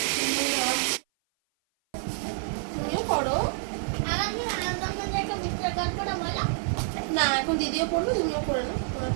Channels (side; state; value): left; silent; 56 dB below the other